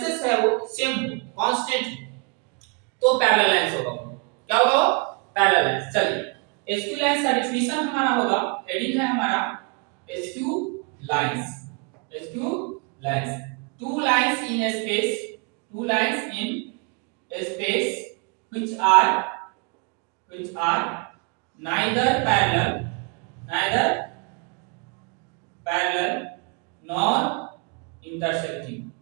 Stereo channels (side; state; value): left; quieter; 34.7 dB